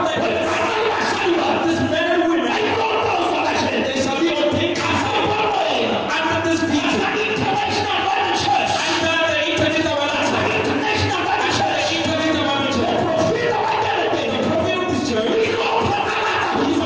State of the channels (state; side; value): identical; both; correlation 1.00